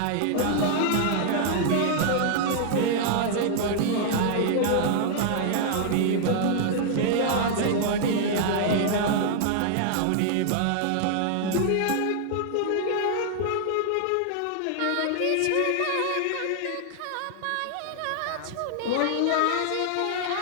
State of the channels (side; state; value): both; different; correlation 0.00